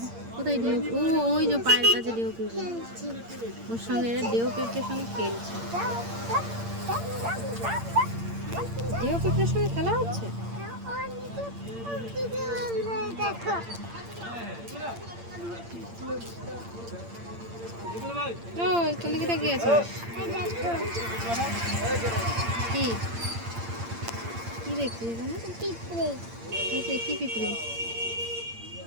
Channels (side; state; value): left; late; 8.7 ms